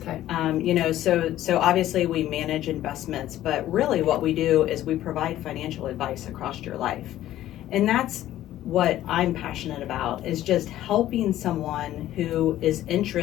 Okay. So obviously we manage investments, but really what we do is we provide financial advice across your life. And that's what I'm passionate about, is just helping someone who is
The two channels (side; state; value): right; quieter; 13.5 dB